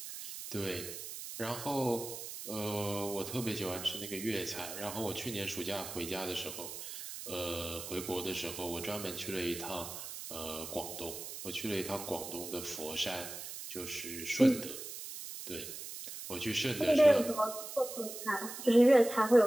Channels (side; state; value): right; noise; hiss, 9 dB below the sound